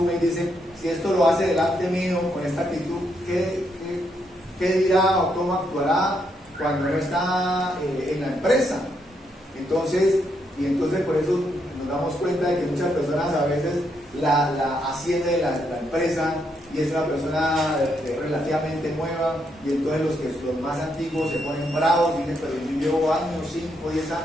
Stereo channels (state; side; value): normal; both; correlation 0.77